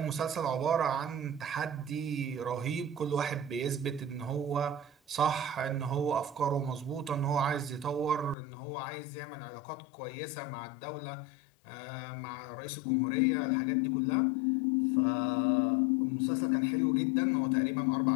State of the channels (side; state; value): right; drops out; at 8.3 s